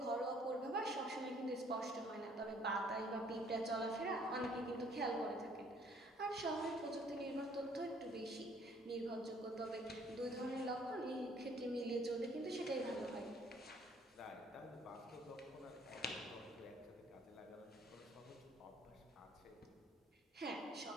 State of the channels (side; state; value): both; normal; correlation 0.61